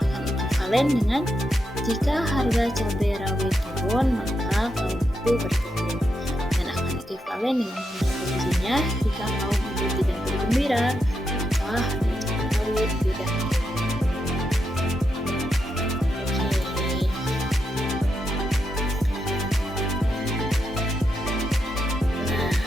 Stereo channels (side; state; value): both; normal; correlation 0.84